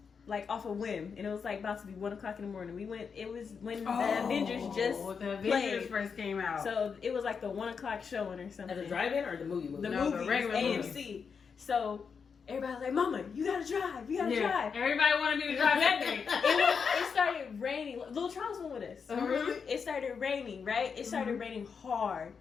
off a whim, and it was like about to be 1:00 in the morning. We went. It was when the Avengers just played. First came out. So it was like the 1:00 showing or something. At the drive-in or the movie? The No, movies, the regular AMC. movie. So everybody was like, "Mama, you gotta drive. You gotta drive." Everybody wanted me to drive that day. It started raining. Little Charles went with us. Mm-hmm. It started raining, right? It started raining hard.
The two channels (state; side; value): quieter; right; 6.0 dB